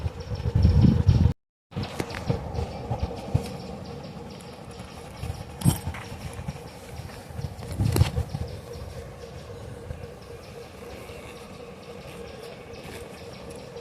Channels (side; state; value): both; identical; correlation 1.00